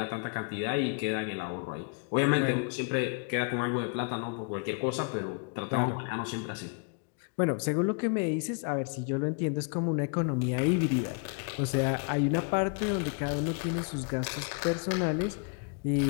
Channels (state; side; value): quieter; right; 37.4 dB